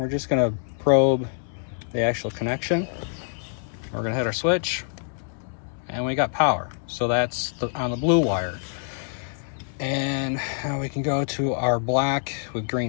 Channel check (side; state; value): right; silent; 61 dB below the other